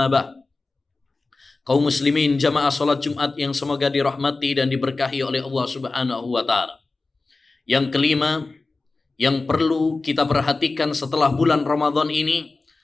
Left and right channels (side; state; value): right; quieter; 3.6 dB